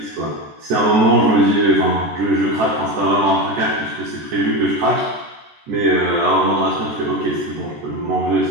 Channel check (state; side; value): late; left; 14 ms